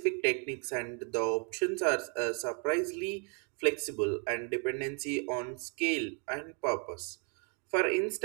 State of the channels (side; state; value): left; quieter; 38.8 dB